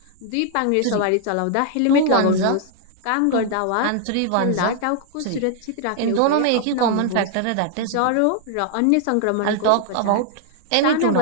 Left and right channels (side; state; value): both; different; correlation 0.00